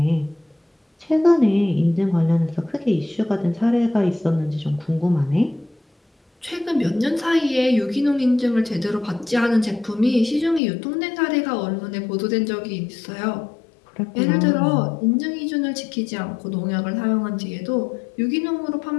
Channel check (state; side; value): drops out; right; at 10.6 s